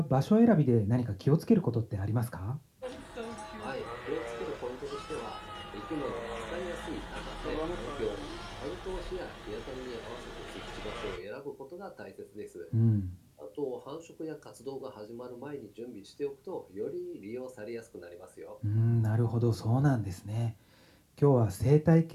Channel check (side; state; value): both; identical; correlation 1.00